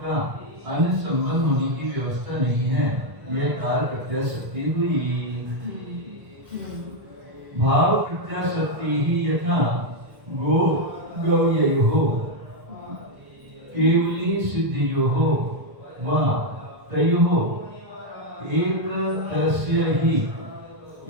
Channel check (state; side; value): late; left; 1.4 ms